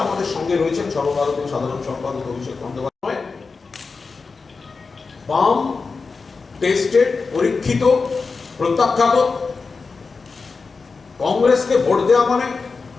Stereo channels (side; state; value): right; quieter; 4.5 dB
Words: আমাদের সঙ্গে রয়েছেন সর্বভারতীয় সাধারণ সম্পাদক অভিষেক বন্দ্যোপাধ্যায়। বাম, টেস্টেড, পরীক্ষিত, প্রত্যাখ্যাত কংগ্রেসকে ভোট দেওয়া মানে